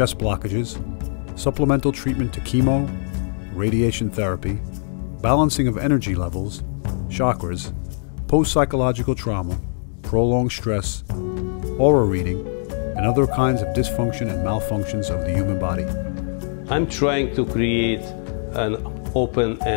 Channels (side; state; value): right; silent; digital silence